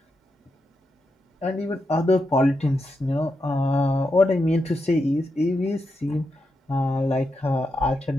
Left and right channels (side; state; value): both; normal; correlation 0.85